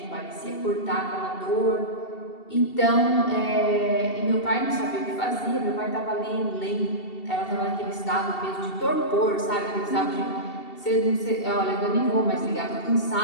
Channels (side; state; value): right; late; 2.7 ms